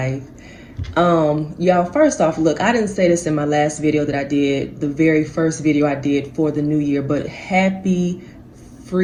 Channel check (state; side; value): identical; both; correlation 1.00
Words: Y'all, first off, look, I didn't say this in my last video that I did, the very first video I did for the new year, but happy